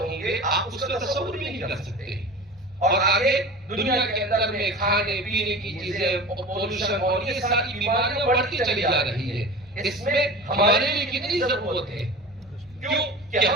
گے آپ اس کا تصور بھی نہیں کر سکتے. اور آگے دنیا کے اندر میں کھانے پینے کی چیزیں، پولوشن اور یہ ساری بیماریاں بڑھتی چلی جا رہی ہے. اس میں ہمارے لیے کتنی ضرورت ہے؟ کیوں کہ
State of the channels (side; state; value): both; normal; correlation 0.35